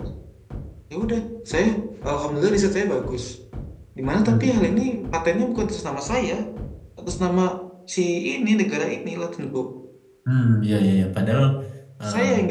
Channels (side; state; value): both; identical; correlation 1.00